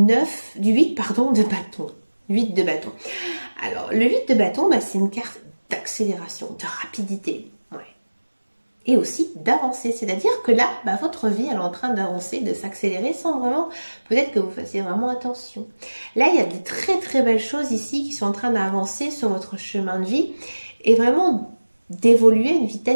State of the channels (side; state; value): both; inverted; correlation -1.00